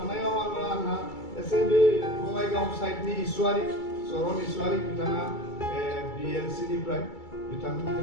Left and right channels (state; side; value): late; right; 2.3 ms